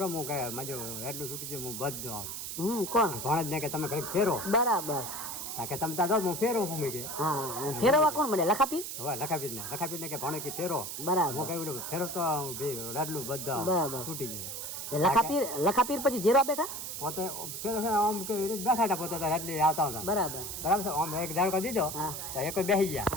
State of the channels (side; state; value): right; noise; hiss, 6 dB below the sound